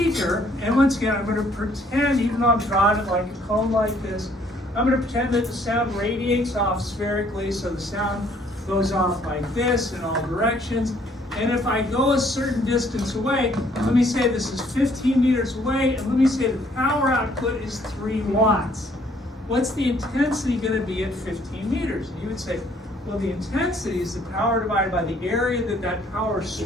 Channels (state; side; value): normal; both; correlation 0.63